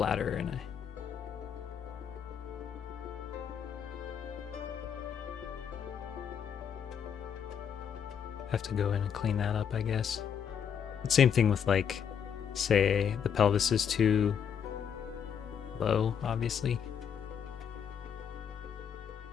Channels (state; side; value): quieter; right; 7.8 dB